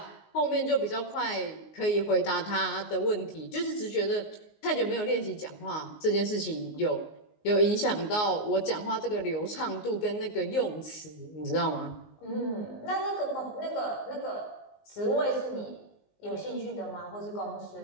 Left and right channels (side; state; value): right; late; 19 ms